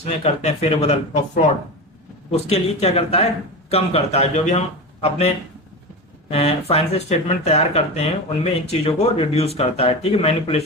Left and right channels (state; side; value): normal; both; correlation 0.24